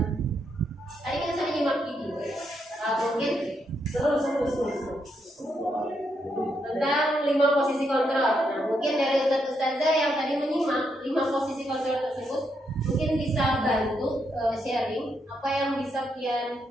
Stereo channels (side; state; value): both; normal; correlation 0.79